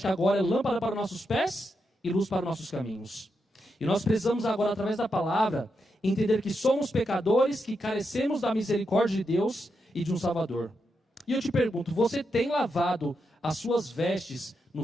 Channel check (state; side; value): normal; both; correlation 0.84